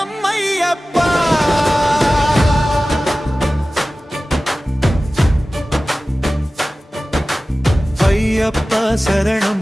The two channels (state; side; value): normal; both; correlation 0.96